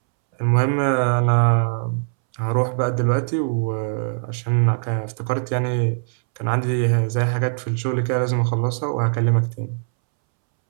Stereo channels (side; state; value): left; silent; 65 dB below the other